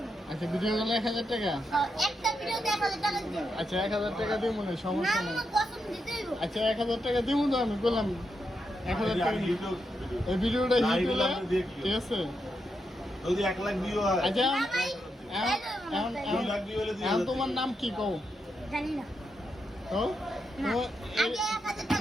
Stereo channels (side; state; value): both; normal; correlation 0.84